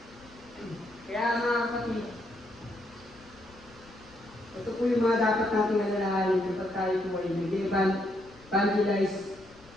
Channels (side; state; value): left; noise; rumble, 25 dB below the sound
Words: Kaya mga kapatid, ito po yung mga dapat nating alalahanin kapag tayo po ay nag-evangelize